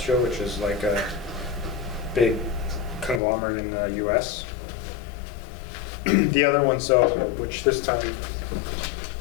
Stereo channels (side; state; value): right; drops out; at 3.2 s